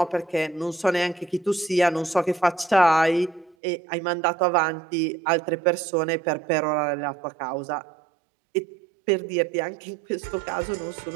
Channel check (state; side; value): drops out; left; at 3.6 s